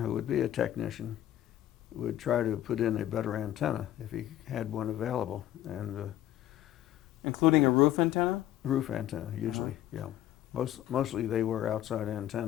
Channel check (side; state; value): right; quieter; 12.7 dB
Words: who would be a technician, would try to put in a better antenna if he had one available. And Including a roof antenna? roof antenna, usually, yeah. Mostly they were outside